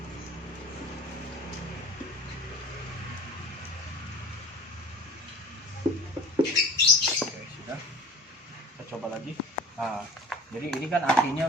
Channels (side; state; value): both; normal; correlation 0.41